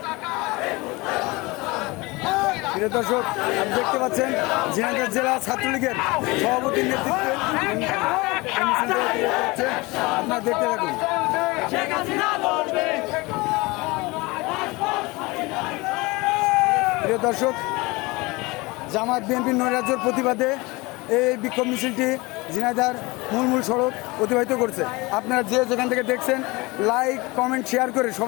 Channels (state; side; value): quieter; right; 23.7 dB